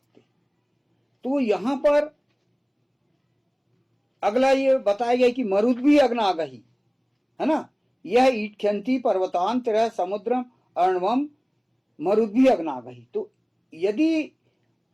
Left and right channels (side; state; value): both; identical; correlation 1.00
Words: हैं। तो यहां पर अगला ये बताया गया कि मरुद भी अग्नागही, है ना, यह ईटख्यंती पर्वतान तेरह समुद्रम अर्णवम मरुद भी अग्नागही। तो यदि